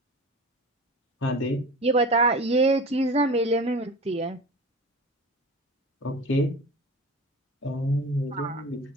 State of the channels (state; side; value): normal; both; correlation 0.35